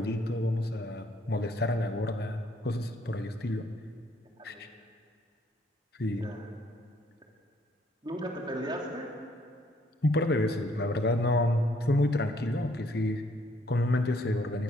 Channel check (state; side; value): normal; both; correlation 0.66